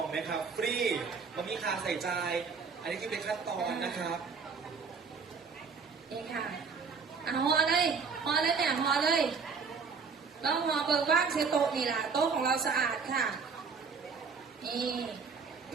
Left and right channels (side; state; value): left; quieter; 5.3 dB